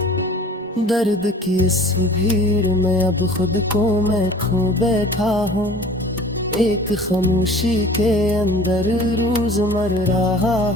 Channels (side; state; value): both; normal; correlation 0.45